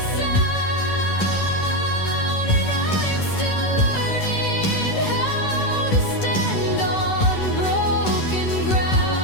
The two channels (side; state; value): right; late; 10 ms